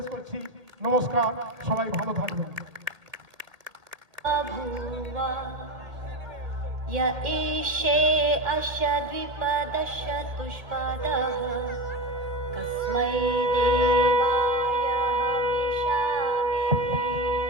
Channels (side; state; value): left; late; 1.6 ms